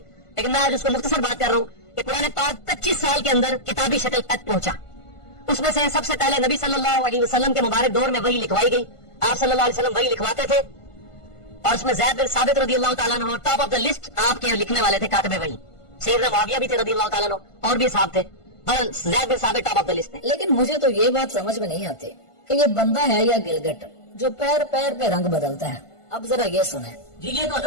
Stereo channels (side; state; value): right; late; 1.5 ms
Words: لیکن میں آج اس کو مختصر بات کر رہا ہوں کہ قرآن پاک 25 سال کے اندر کتابی شکل تک پہنچا. اس میں سے سب سے پہلے نبی صلی اللہ علیہ وسلم کے مبارک دور میں وحی لکھوائی گئی. آپ صلی اللہ علیہ وسلم وحی لکھواتے تھے, اور اس میں زید بن ثابت رضی اللہ تعالیٰ عنہ ٹاپ آف دا لسٹ آپ کے لکھنے والے تھے, کاتب وحی. سیدنا معاویہ بھی تھے رضی اللہ تعالیٰ عنہ, اور بھی صاحب تھے, پر زید بن ثابت ٹاپ آف دا لسٹ تھے. لیکن مجھے تو یہ بات سمجھ میں نہیں آتی کہ یہ بندہ ہے یا گلگٹ جو پیر پیر پہ رنگ بدلتا ہے. اب ذرا یہ سنیں. جی یہ تو